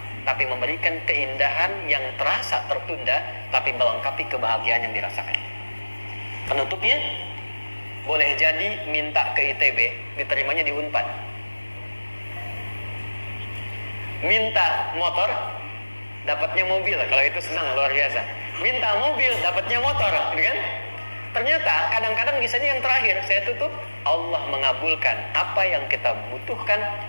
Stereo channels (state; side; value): inverted; both; correlation -1.00